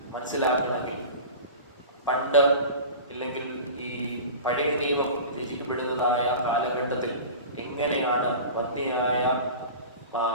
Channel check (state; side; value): inverted; both; correlation -0.35